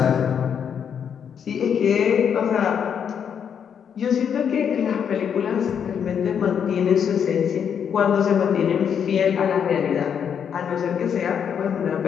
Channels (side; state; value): right; quieter; 7.8 dB